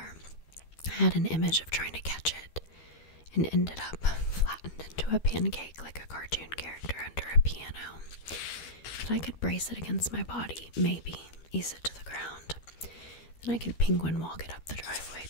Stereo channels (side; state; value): right; late; 13 ms